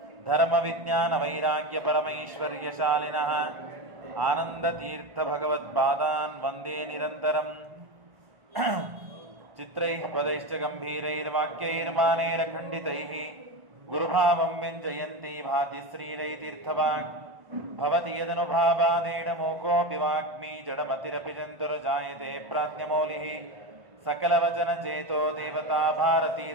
धर्मविज्ञानवैराग्यपरमैश्वर्यशालिनः आनन्दतीर्थभगवत्पादान् वन्दे निरन्तरम् चित्रैः पदैश्च गम्भीरैर्वाक्यैर्मानैरखण्डितैः गुरुभावं व्यञ्जयन्ती भाति श्रीरैतीर्थवाक् भवति यदनुभावादेडमोकोऽपि वाग्मी जडमतिरपि जन्तुर्जायते प्राज्ञमौलिः सकलवचनचेतो देवता भारती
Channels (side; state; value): left; late; 1.5 ms